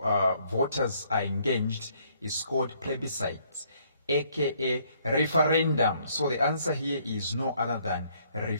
voters are engaged, is called plebiscite, aka referendum. So the answer here is no other than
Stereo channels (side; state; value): both; inverted; correlation -0.66